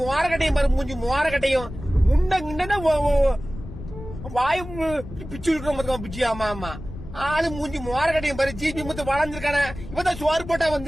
மோரக்கட்டையும் பாரு, மூஞ்சி மோரக்கட்டையும். முண்டா வாயு பிச்சு இருக்கிற பிச்சு. ஆமா ஆமா, ஆளு மூஞ்சி மோரக்கட்டையும் பாரு. ஜிபி முத்து வளர்ந்துருக்கான இவதான் சோறு போட்டா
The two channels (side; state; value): left; noise; rumble, 12 dB below the sound